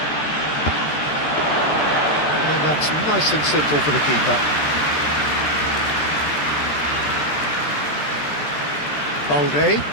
And that's nice and simple for the keeper. Balde.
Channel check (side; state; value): right; late; 13 ms